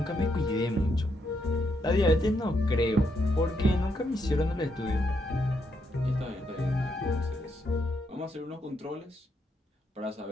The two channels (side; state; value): both; normal; correlation 0.78